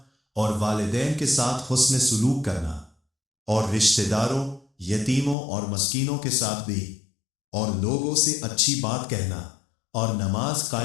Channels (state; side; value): drops out; right; at 5.4 s